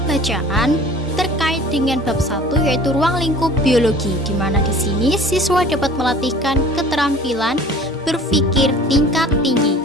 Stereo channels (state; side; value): normal; both; correlation 0.46